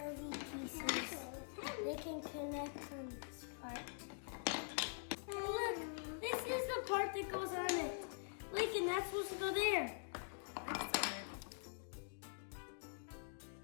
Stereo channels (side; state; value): right; silent; digital silence